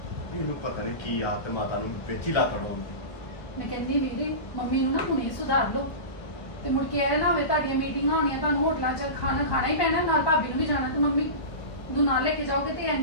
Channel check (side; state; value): right; late; 1.0 ms